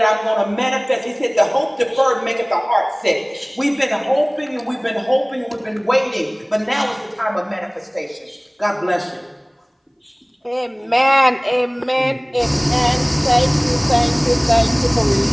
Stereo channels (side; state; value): both; identical; correlation 1.00